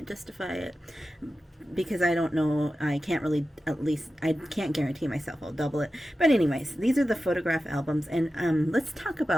justify it, because I don't know, I can't really, at least, I can't guarantee myself I'll double it. But anyways, these are the photograph albums, and let's talk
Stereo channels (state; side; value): normal; both; correlation 0.93